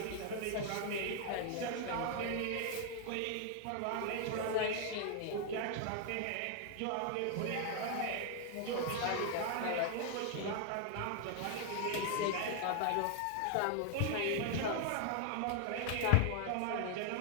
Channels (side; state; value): both; different; correlation 0.00